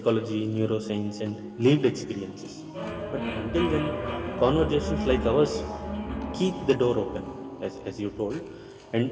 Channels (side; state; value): both; identical; correlation 1.00